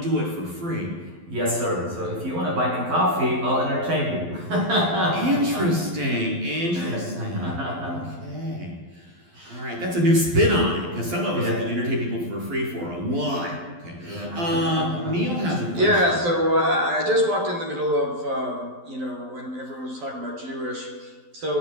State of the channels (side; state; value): left; late; 12 ms